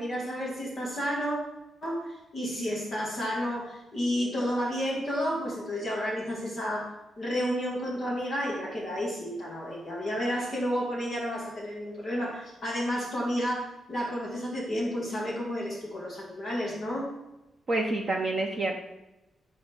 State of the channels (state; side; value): normal; both; correlation 0.83